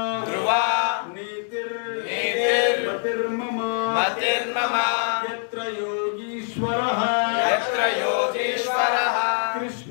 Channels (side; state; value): right; silent; 58 dB below the other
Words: ధ్రువా నీతిర్ నీతిర్ మతిర్మమ మతిర్మమ. యత్ర యోగీశ్వరః, యత్ర